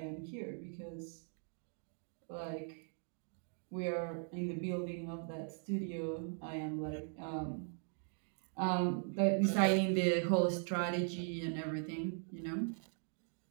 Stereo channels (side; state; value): left; silent; 51 dB below the other